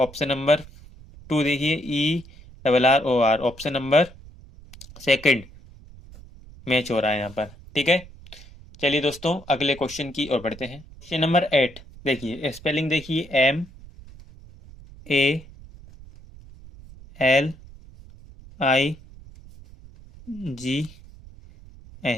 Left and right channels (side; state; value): right; noise; rumble, 20 dB below the sound